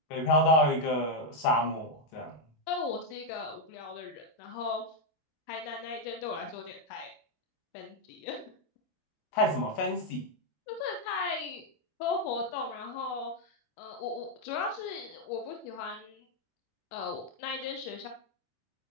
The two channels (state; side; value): late; right; 25 ms